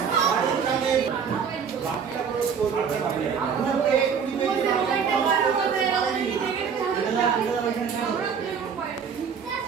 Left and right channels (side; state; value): left; quieter; 6.7 dB